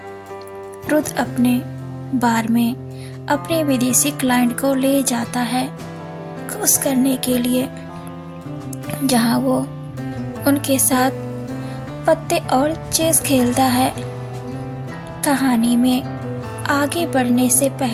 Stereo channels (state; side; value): identical; both; correlation 1.00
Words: रुद्र अपने बार में अपने विदेशी क्लाइंट को ले जाता है खुश करने के लिए, जहाँ वो उनके साथ पत्ते और चेस खेलता है। कहानी में आगे बढ़ने से